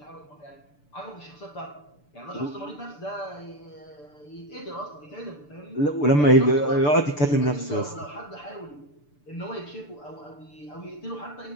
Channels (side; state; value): right; late; 6.8 ms